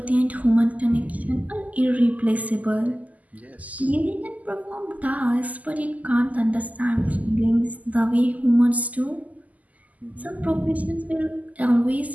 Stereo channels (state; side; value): late; left; 0.076 ms